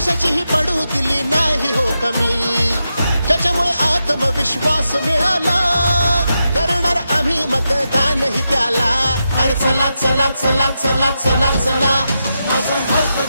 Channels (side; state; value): both; inverted; correlation -0.87